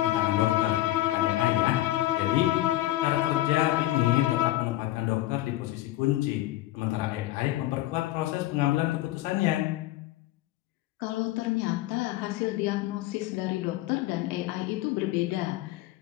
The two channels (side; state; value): right; quieter; 15.7 dB